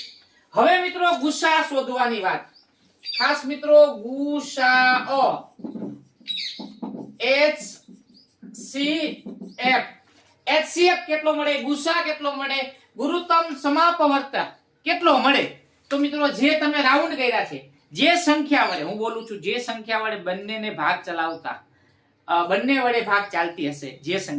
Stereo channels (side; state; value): both; identical; correlation 1.00